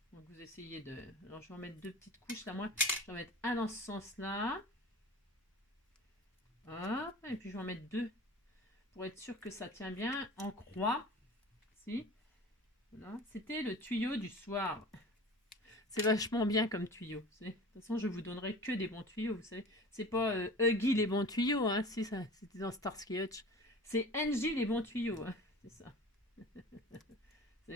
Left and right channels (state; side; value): normal; both; correlation 0.38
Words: Donc vous essayez de... Alors je vais en mettre 2 petites couches, là, moi, je vais en mettre un dans ce sens-là. Hop, et puis je vais en mettre 2 pour être sûr que ça tient bien en croix. Si. Voilà. C'était le tuyau du soir. C'est vachement bien comme tuyau. De toute façon, je vous donnerai que des bons tuyaux. Vous savez, c'est pas Huggy les bons tuyaux. Hein, si ça, c'était dans Starsky Hutch. C'est Angie les bons tuyaux. Hein, c'est ça. C'est